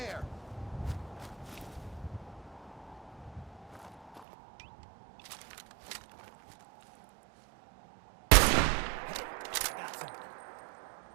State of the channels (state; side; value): drops out; left; at 4.2 s